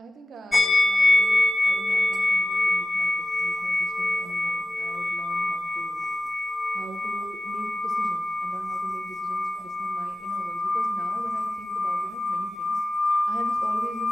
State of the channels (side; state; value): both; normal; correlation 0.94